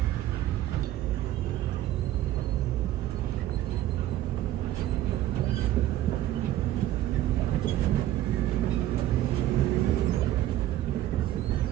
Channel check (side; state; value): left; quieter; 13.8 dB